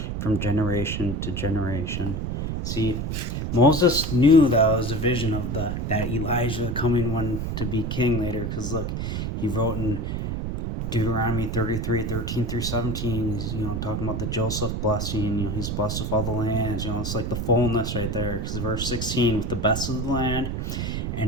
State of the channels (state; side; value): noise; right; rumble, 2 dB below the sound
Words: from generation to generation. See, Moses knew that was a vision of that Elijah coming one to be king later, because look, he wrote in Deuteronomy 33, 13 through 17, he's, talking about the Joseph blessing, he's blessed with all the lands, it's like the fullness right there, because verse 16, with the best of the land